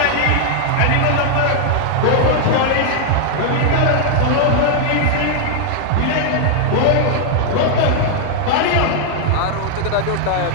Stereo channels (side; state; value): both; different; correlation 0.00